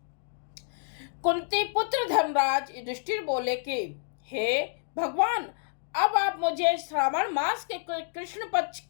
कुंती पुत्र धर्मराज युधिष्ठिर बोले कि हे भगवान, अब आप मुझे श्रावण मास के कृष्ण पक्ष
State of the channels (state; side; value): silent; right; digital silence